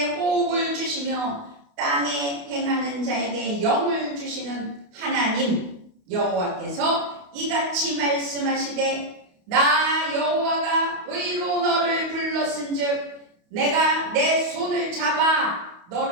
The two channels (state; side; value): late; left; 28 ms